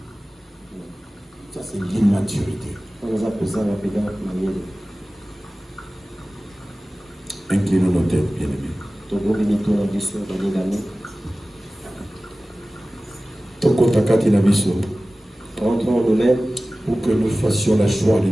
Ça, c'est l'immaturité. Inclinons nos têtes, bien-aimés. Rentrons nous-mêmes pour que nous fassions la joie de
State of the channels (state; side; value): normal; both; correlation 0.97